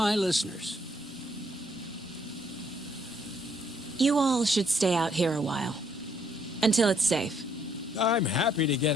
listeners. You all should stay out here a while. Until it's safe. I'm happy to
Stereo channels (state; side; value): normal; both; correlation 0.68